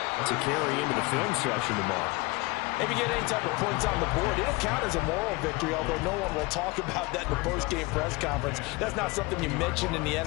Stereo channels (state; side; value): quieter; right; 24.1 dB